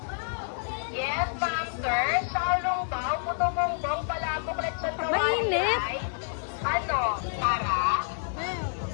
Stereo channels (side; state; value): right; silent; digital silence